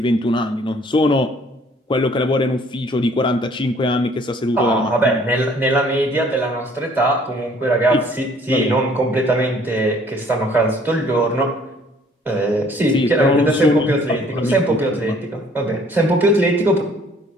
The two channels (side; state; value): both; normal; correlation 0.58